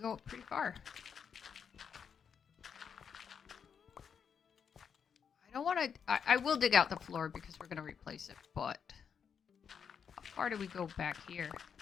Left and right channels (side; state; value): right; quieter; 7.0 dB